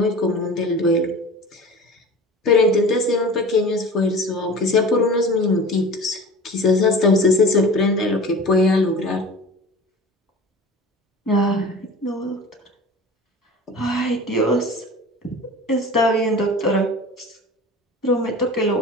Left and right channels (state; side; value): normal; both; correlation 0.38